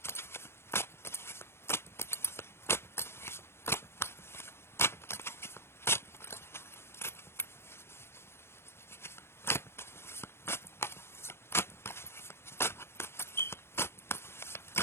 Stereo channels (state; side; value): late; right; 0.12 ms